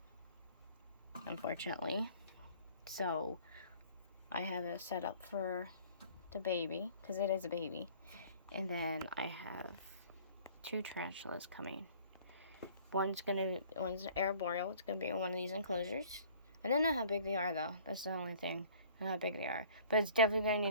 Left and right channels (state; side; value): inverted; both; correlation -0.52